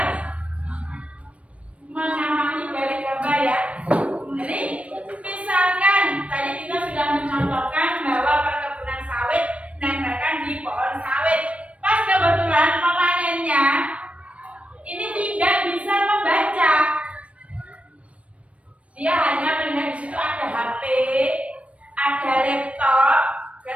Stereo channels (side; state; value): left; late; 0.063 ms